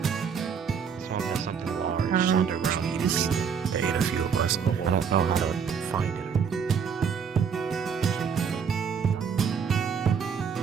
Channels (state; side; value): quieter; left; 6.6 dB